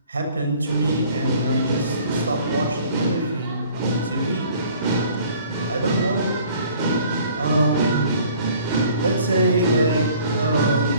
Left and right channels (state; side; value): inverted; both; correlation -0.54